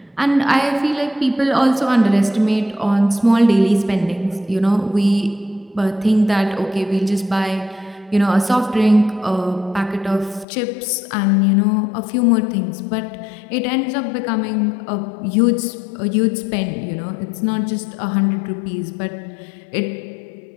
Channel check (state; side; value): drops out; right; at 10.5 s